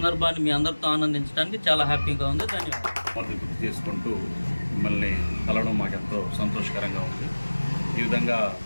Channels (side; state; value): both; inverted; correlation -1.00